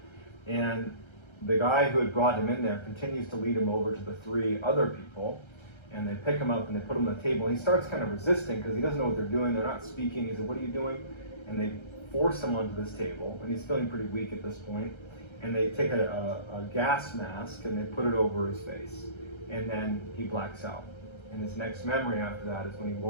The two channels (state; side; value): late; right; 1.3 ms